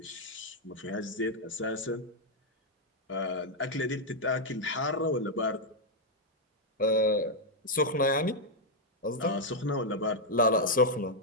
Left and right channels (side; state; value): both; normal; correlation -0.02